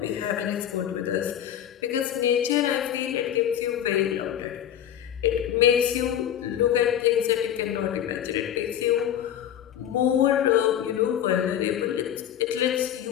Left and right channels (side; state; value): right; quieter; 10.4 dB